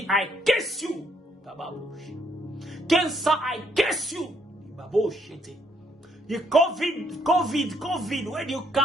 I curse you. Cancer, I curse you. The COVID, where do you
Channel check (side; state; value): both; normal; correlation 0.71